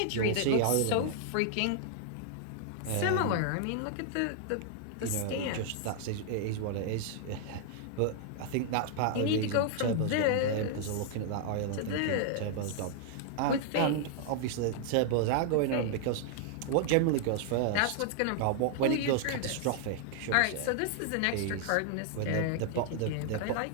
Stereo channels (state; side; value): different; both; correlation 0.00